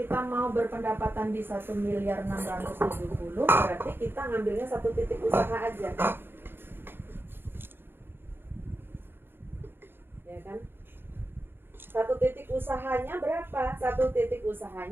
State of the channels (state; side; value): late; left; 0.10 ms